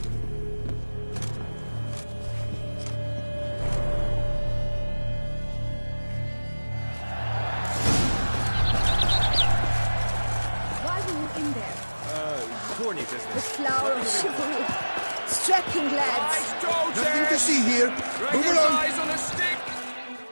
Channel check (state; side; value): inverted; both; correlation -1.00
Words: The flower of chivalry. Strapping lads. Nothing to see here. Move along. Eyes on a stick.